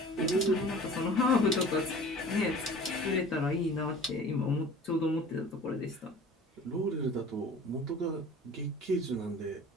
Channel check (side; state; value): both; normal; correlation 0.43